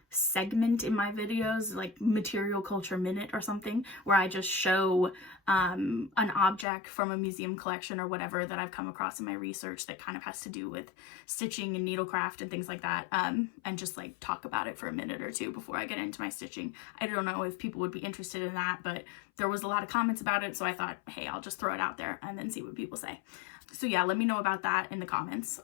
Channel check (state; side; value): drops out; right; at 6.7 s